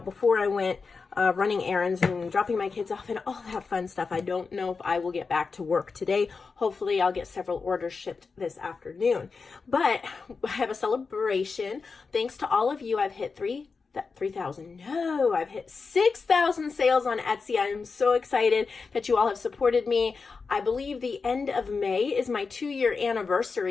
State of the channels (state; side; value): quieter; right; 4.7 dB